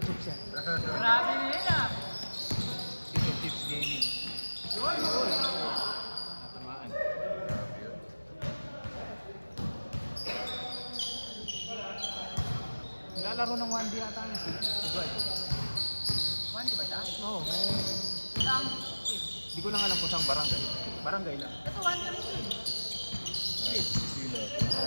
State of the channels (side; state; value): both; inverted; correlation -1.00